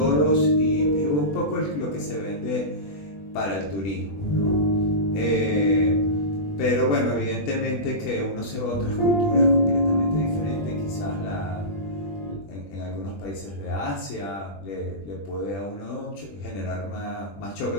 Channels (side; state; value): right; late; 21 ms